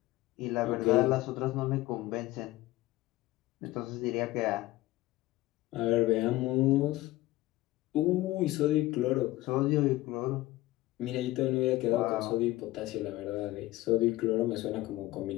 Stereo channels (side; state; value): right; quieter; 17.8 dB